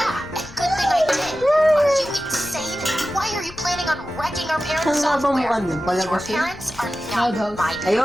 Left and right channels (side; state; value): left; noise; rumble, 18 dB below the sound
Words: and good thing I did. Are you insane? Why are you planning on wrecking our parents' Saan nga ba software? mukha niyan? Your Palabas yun? parents are not Loud house. my